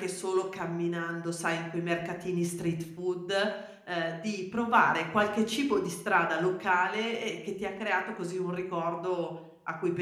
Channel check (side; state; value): both; identical; correlation 1.00